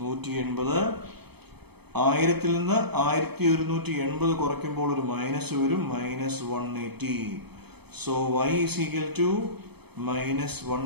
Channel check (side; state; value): left; late; 0.97 ms